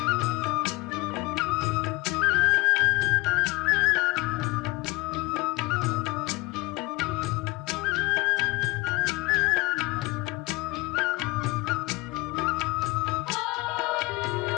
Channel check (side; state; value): right; quieter; 22.9 dB